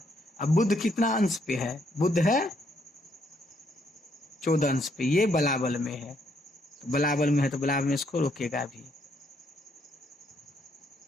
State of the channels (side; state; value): both; normal; correlation 0.72